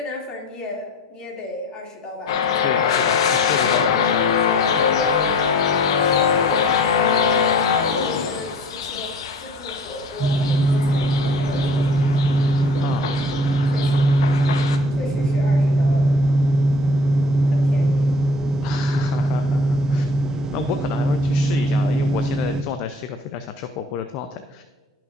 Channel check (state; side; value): normal; both; correlation 0.46